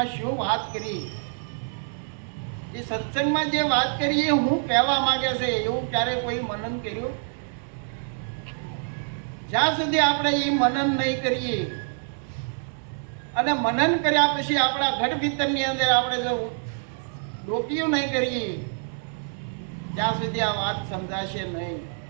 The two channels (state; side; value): silent; left; 61 dB below the other